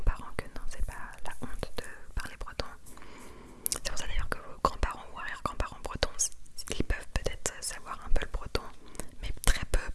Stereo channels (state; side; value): identical; both; correlation 1.00